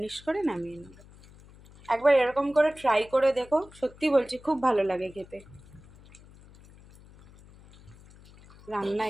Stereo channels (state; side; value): noise; left; hum, 23 dB below the sound